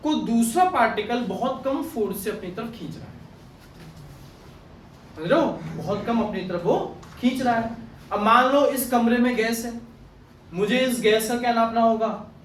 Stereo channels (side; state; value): both; identical; correlation 1.00